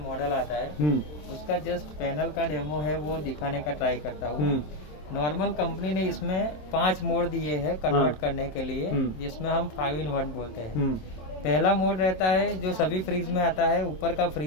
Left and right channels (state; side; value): late; right; 27 ms